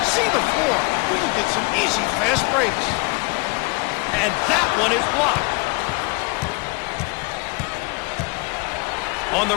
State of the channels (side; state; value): right; quieter; 28.5 dB